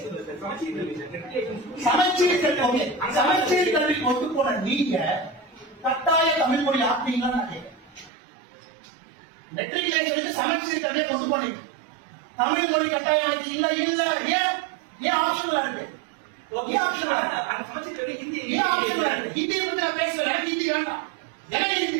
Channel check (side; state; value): left; drops out; at 8.1 s